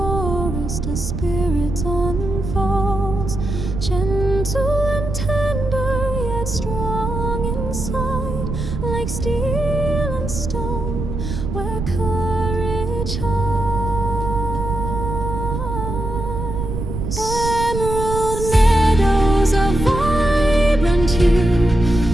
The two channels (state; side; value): noise; right; rumble, 4 dB below the sound